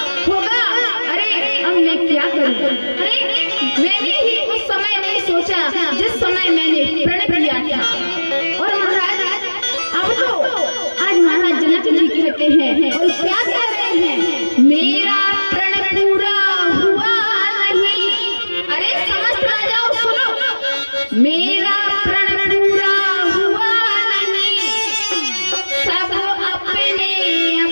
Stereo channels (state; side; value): inverted; both; correlation -1.00